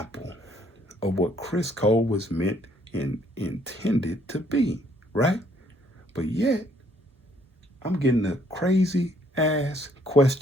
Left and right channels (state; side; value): normal; both; correlation 0.66